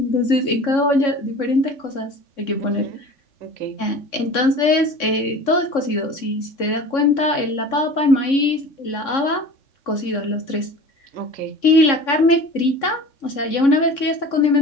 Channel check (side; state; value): right; late; 3.6 ms